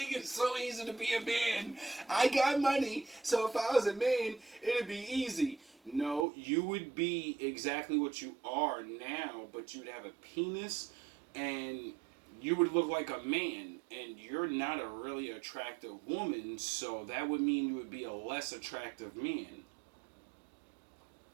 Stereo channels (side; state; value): left; drops out; at 6.2 s